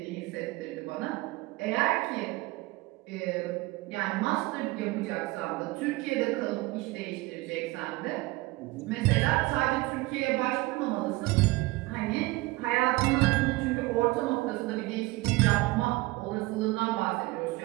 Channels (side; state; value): left; quieter; 21.4 dB